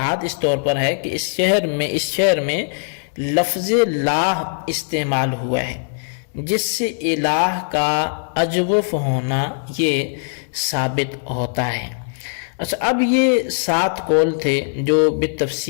اس طور پر ہے کہ اس شعر میں لفظ لاہ استعمال ہوا ہے جس سے الہ کا اجوف ہونا یہ ثابت ہوتا ہے۔ اچھا، اب یہ 7 قول تھے جو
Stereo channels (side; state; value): right; silent; 64 dB below the other